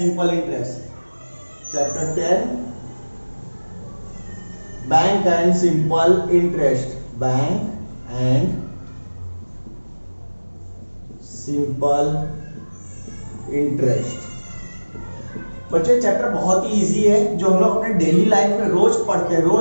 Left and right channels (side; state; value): both; inverted; correlation -1.00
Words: Interest. Chapter 10, Bank and Simple Interest. Bank and Simple Interest. बच्चे चैप्टर बहुत ही इजी है, जो हम लोग अपने डेली लाइफ में रोज पढ़ते हैं,